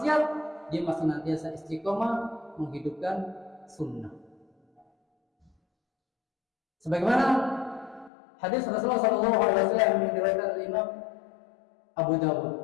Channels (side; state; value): right; drops out; at 8.1 s